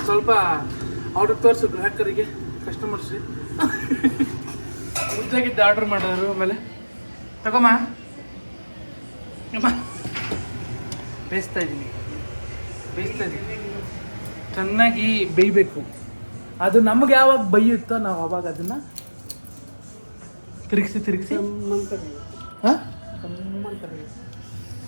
ಸ್ವಲ್ಪ ಅವ್ರಿಗೆ ತೋರಿಸು, ಗ್ರಾಹಕರಿಗೆ, ಕಸ್ಟಮರ್ಸ್ಗೆ. ಉದ್ದಾಗಿದ್ದು ಆರ್ಡ್ರ್ ಮಾಡೋರು. ಆಮೇಲೆ ತಗೊಮ್ಮ ಬೇಯಿಸ್ತಾ ಇದ್ದೀನಿ. ಚೆನ್ನಾಗಿ ಬೇಯಬೇಕು. ಅದು ನಮ್ಗೆ ಯಾವಾಗ ಬೇಯುತ್ತೋ ನಾವು ಅವಾಗ ಅದನ್ನು ತಿರುಗಿಸಿ ಹಾಂ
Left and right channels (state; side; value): inverted; both; correlation -1.00